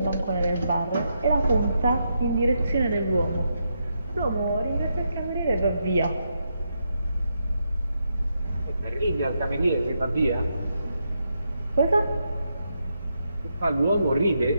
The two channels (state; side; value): inverted; both; correlation -0.82